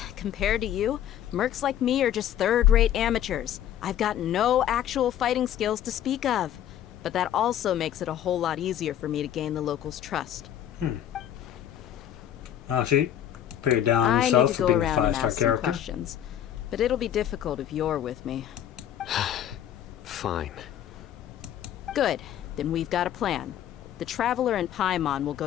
Compared to you, mercs like me are just third-rate amateurs. I've got no actual fighting skills to speak of. But that also makes it a whole lot easier for me to gain the locals' trust. Oh, she paid down I need herself to for go being a around and 5-star ask some character. questions. But it'll be difficult if you're with me. Fine. Good. Then we've got a plan. The Traveler and Paimon will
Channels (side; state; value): right; quieter; 10.8 dB